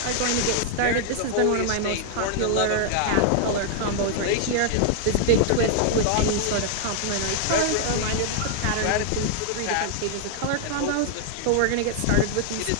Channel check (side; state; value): both; different; correlation -0.01